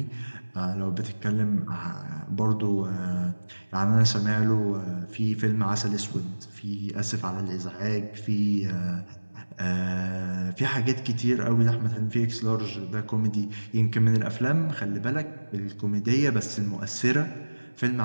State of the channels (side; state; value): both; inverted; correlation -1.00